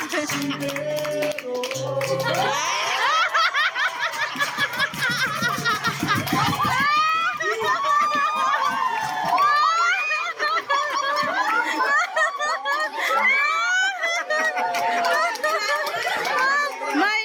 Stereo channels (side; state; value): both; identical; correlation 1.00